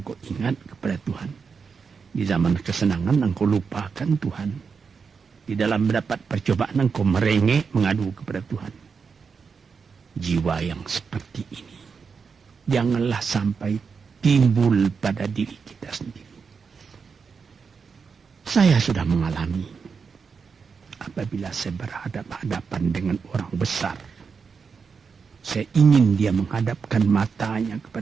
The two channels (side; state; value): left; quieter; 5.6 dB